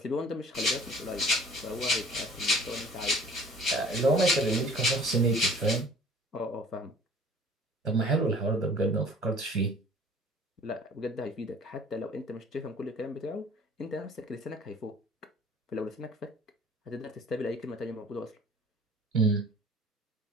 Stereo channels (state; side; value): normal; both; correlation 0.50